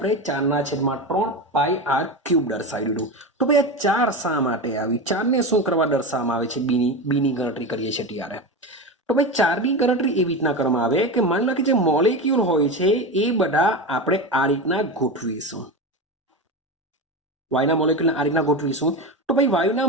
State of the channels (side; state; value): both; normal; correlation 0.21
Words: 4/3 પાઈ આર ક્યુબ દર્શાવી દીધું. તો ભાઈ આ 4 શા માટે આવી? 4 ને શું કરવા દર્શાવવામાં આવે છે? બીની ગણતરી કરીએ છીએ ત્યારે. તો ભાઈ 4ની ગણતરી એવી રીતના કરવામાં આવે કે માની લો કે જે મોલેક્યુલ હોય છે એ બધા આપણે આ રીતના ગોઠવીશું. વાયુના મોલેક્યુલને આ રીતના ગોઠવીશું. તો ભાઈ વાયુના